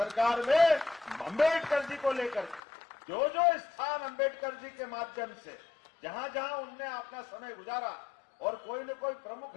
में, अंबेडकर जी को लेकर जो जो स्थान अंबेडकर जी के माध्यम से जहां जहां उनने अपना समय गुजारा और कोई न कोई प्रमुख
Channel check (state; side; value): drops out; right; at 2.6 s